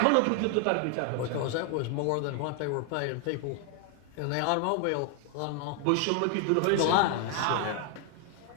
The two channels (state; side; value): different; both; correlation 0.00